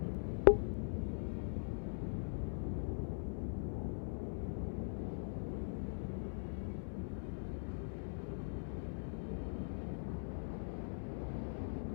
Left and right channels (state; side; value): silent; right; digital silence